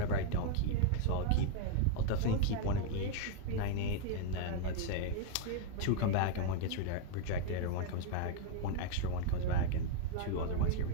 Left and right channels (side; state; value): both; different; correlation 0.00